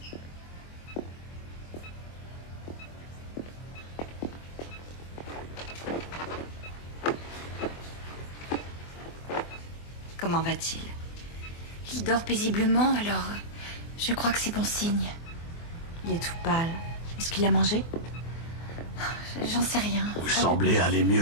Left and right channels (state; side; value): late; right; 24 ms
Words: Comment va-t-il? Il dort paisiblement, alors je crois que c'est bon signe. Il est tout pâle. Est-ce qu'il a mangé? J'en sais rien. Vous semblez aller